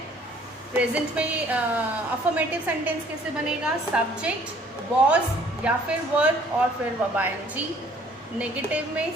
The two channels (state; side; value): normal; both; correlation 0.58